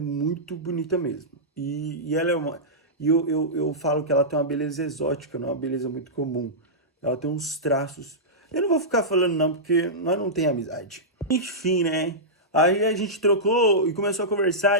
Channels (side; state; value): both; normal; correlation -0.13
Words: bonita mesmo. E ela é uma. E eu falo que ela tem uma beleza exótica, não é uma beleza muito comum. Ela tem uns traços. Eu não vou ficar falando não, porque nós não tem amizade. Enfim, né? Aí a gente trocou e começou a